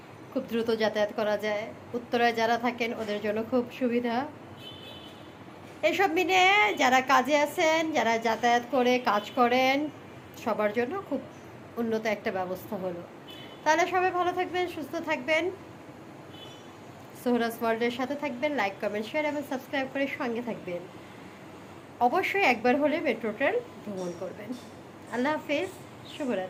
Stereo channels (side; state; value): both; identical; correlation 1.00